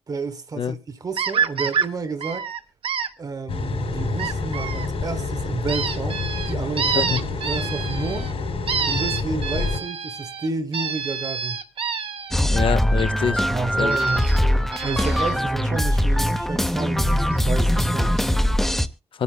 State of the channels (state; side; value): normal; both; correlation 0.70